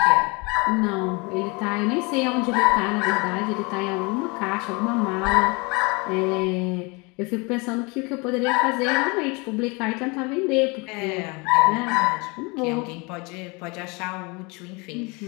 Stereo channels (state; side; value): quieter; right; 28.3 dB